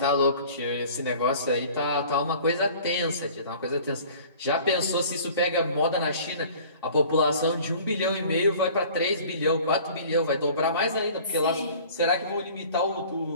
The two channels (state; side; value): inverted; both; correlation -0.47